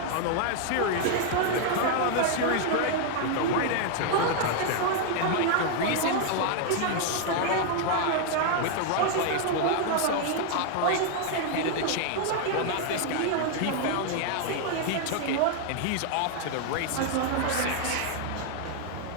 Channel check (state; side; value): different; both; correlation 0.00